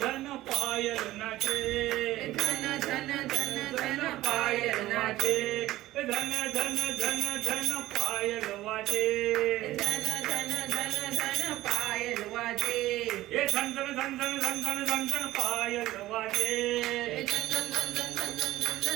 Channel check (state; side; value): quieter; left; 16.0 dB